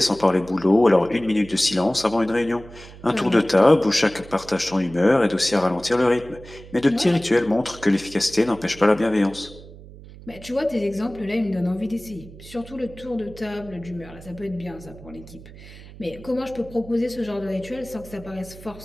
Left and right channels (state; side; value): noise; right; hum, 18 dB below the sound